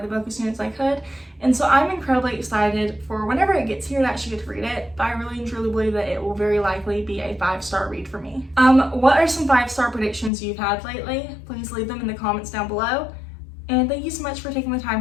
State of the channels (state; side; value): drops out; right; at 10.3 s